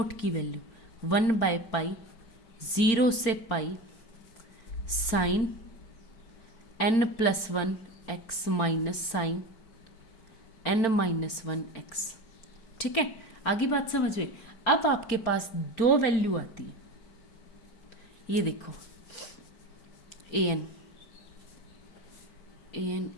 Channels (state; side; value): late; right; 4.4 ms